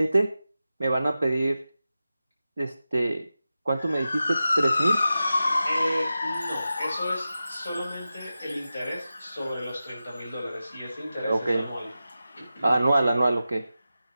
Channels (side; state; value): both; inverted; correlation -0.93